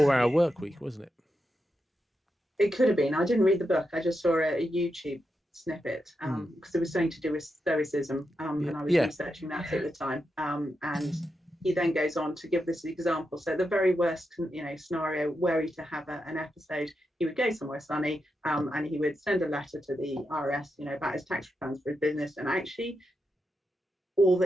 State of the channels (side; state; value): both; normal; correlation 0.86